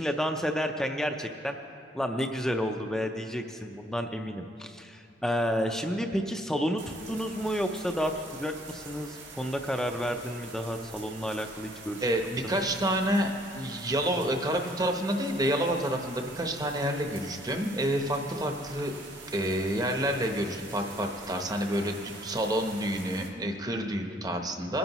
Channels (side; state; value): both; normal; correlation 0.63